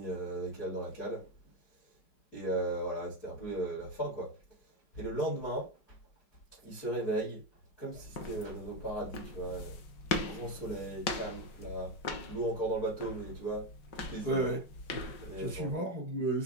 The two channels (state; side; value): late; right; 5.3 ms